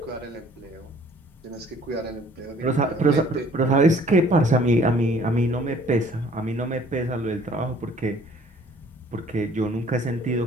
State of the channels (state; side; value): normal; both; correlation 0.56